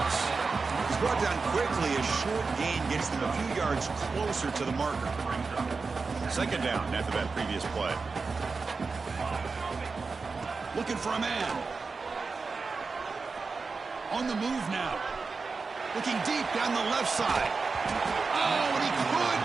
He's brought down quickly. A short gain gets them a few yards closer to the marker. 2nd down after that previous play. Looking for a man. On the move now. Looking deep down the left side. Oh, and he could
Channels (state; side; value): quieter; left; 4.4 dB